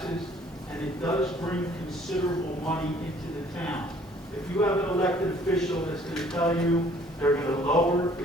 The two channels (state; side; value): normal; both; correlation 0.58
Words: and it does bring considerable money into the town. If you have an elected official that's going to tell you they're going to lower the